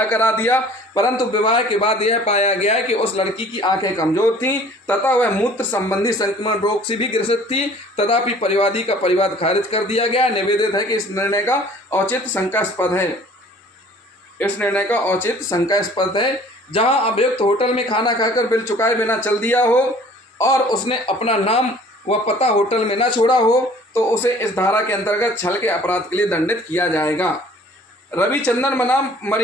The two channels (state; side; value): normal; both; correlation 0.51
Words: करा दिया, परंतु विवाह के बाद यह पाया गया कि उस लड़की की आंखें कमजोर थीं तथा वह मूत्र संबंधी संक्रमण रोग से भी ग्रसित थी। तथापि परिवादी का परिवाद खारिज कर दिया गया। निवेदित है कि इस निर्णय का औचित्य शंकास्पद है। जहां अभियुक्त होटल में खाना खाकर बिल चुकाए बिना चल दिया हो और उसने अपना नाम व पता होटल में न छोड़ा हो तो उसे इस धारा के अंतर्गत छल के अपराध के लिए दंडित किया जाएगा। रविचंद्रन बनाम